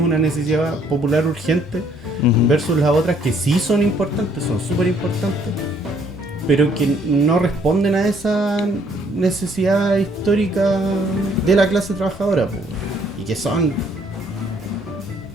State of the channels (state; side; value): normal; both; correlation 0.64